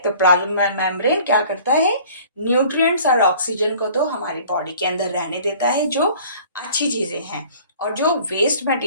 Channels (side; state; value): both; inverted; correlation -0.50